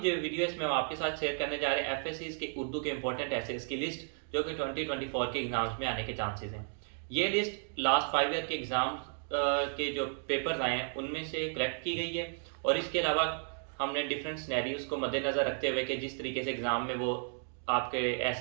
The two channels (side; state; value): left; silent; 55 dB below the other